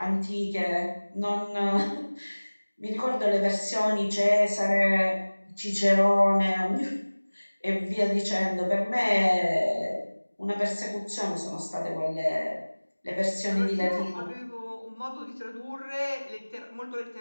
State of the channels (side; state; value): both; inverted; correlation -1.00